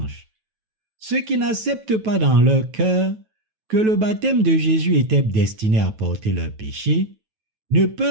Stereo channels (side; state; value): left; late; 9.2 ms